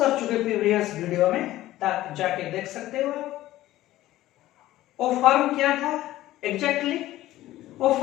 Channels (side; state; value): right; quieter; 15.3 dB